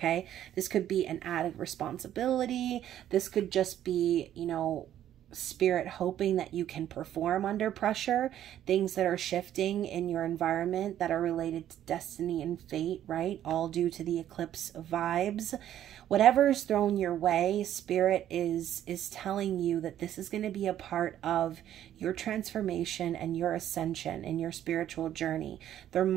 This could be an added responsibility. This could just be, you know, Spirit hoping that you can perform under pressure, things that are shifting in your environment that are related to destiny and fate, right? All due to the eclipse vibes. Whatever is thrown your way, Spirit is telling you that this is going to be a part of your transformation and your ascension in your spiritual journey. There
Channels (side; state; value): left; quieter; 11.4 dB